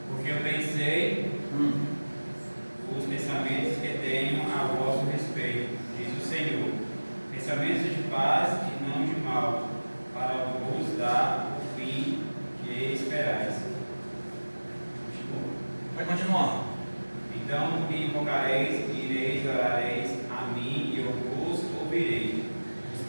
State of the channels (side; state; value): both; inverted; correlation -1.00